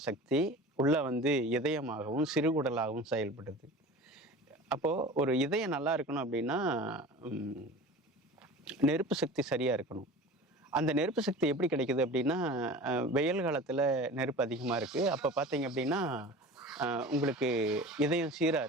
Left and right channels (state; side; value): normal; both; correlation 0.37